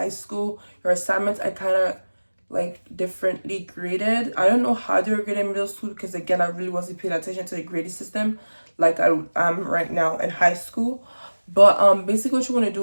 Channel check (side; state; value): both; inverted; correlation -1.00